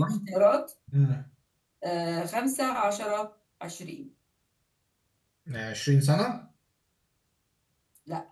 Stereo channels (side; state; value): both; identical; correlation 1.00